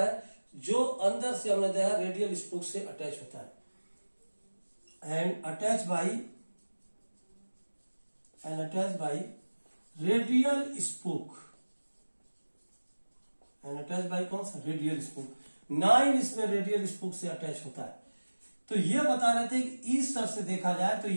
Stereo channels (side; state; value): both; inverted; correlation -1.00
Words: जो अंदर से हमने देखा रेडियल स्पोक से अटैच होता है and attach by radial spoke and attach by कौन सा? Radial spoke. 9 इसमें रेडियल स्पोक से अटैच होता है। तो ये बता रहे थे कि इस तरह से देखा जाए तो